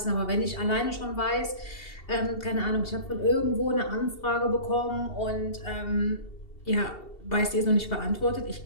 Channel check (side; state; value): right; late; 2.7 ms